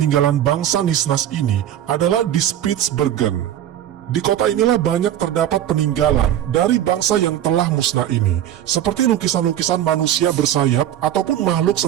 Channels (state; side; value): quieter; left; 11.4 dB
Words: bangsa Nisnas ini adalah di Spitsbergen. Di kota inilah banyak terdapat peninggalan dari bangsa yang telah musnah ini, seperti lukisan-lukisan manusia bersayap ataupun makhluk